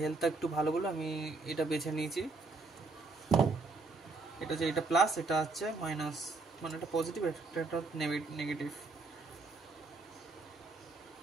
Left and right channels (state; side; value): quieter; left; 3.7 dB